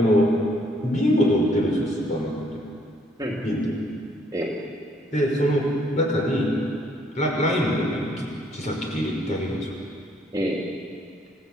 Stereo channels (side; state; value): both; normal; correlation 0.66